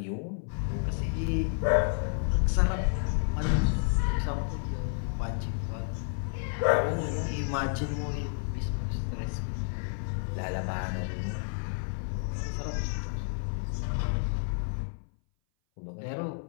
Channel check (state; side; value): silent; right; 57 dB below the other